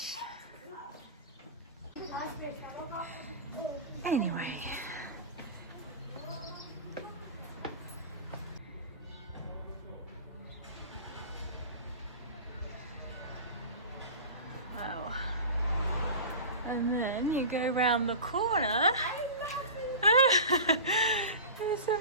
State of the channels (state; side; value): inverted; both; correlation -0.31